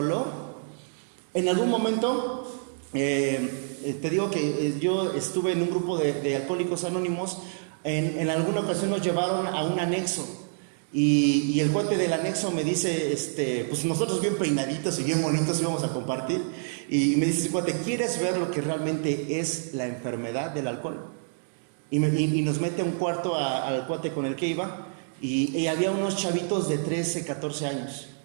En algún momento, te digo que yo estuve en un grupo de alcohólicos anónimos. En alguna ocasión nos llevaron a un anexo. Y el cuate del anexo me dice, pues nosotros bien peinaditos y bien bonitos íbamos a compartir. Y me dice ese cuate, ¿quieres ver lo que realmente es la enfermedad del alcohol? Y nos mete a un cuarto al cuate con el que iba. Y había unos chavitos de 13, 14 años.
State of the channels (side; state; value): left; silent; digital silence